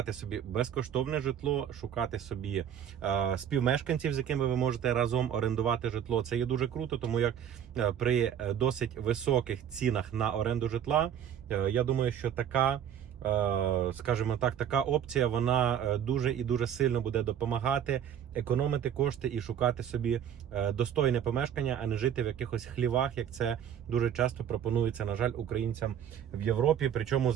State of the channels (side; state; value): left; quieter; 9.3 dB